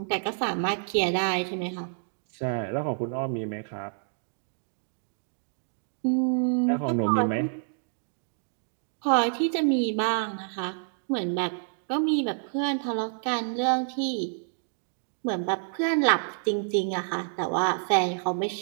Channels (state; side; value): silent; left; digital silence